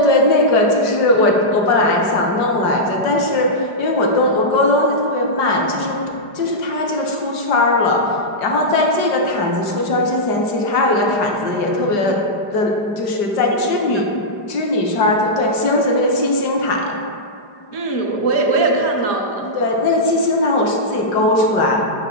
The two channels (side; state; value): right; late; 4.9 ms